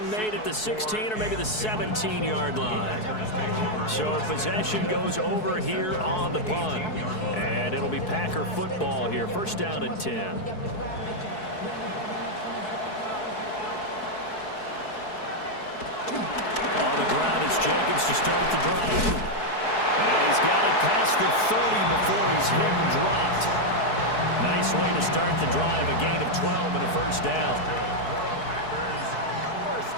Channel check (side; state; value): right; late; 4.7 ms